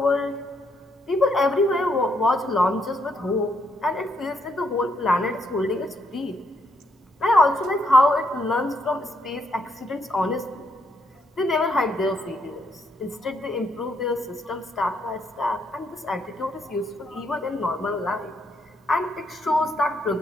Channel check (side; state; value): both; normal; correlation 0.75